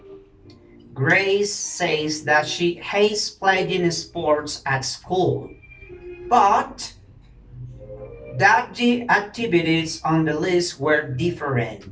Grace says that she hates playing sports at school, but that the activities on the list were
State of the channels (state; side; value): identical; both; correlation 1.00